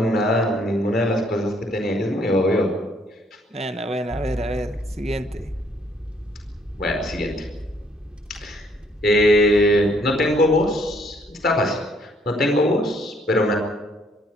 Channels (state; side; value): normal; both; correlation 0.66